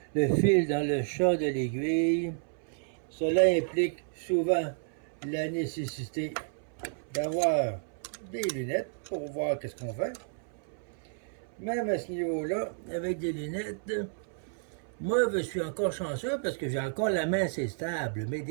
le fil dans le chat de l'aiguille. Cela implique souvent la nécessité d'avoir des lunettes pour voir qu'est-ce qu'on fait. Même à ce niveau-là, avec des lunettes, moi, je suis encore chanceux parce que j'ai encore la main assez stable. Mais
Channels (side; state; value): left; silent; 57 dB below the other